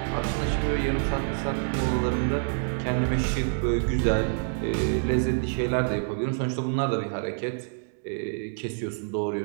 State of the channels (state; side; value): silent; left; 60 dB below the other